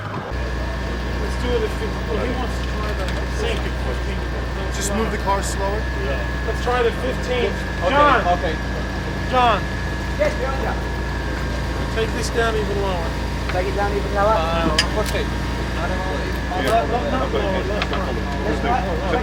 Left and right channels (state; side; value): identical; both; correlation 1.00